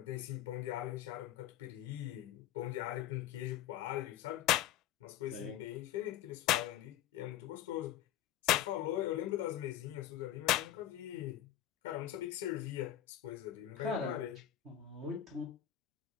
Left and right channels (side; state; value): right; quieter; 12.2 dB